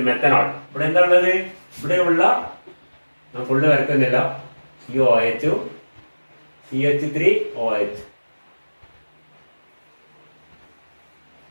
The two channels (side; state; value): both; inverted; correlation -1.00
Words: methanol. ഇവിടെ എന്താ ഉള്ളത്? ഇവിടെയുള്ള ഫുള്ള് വരക്കുന്നില്ല. COOH, CH3OH,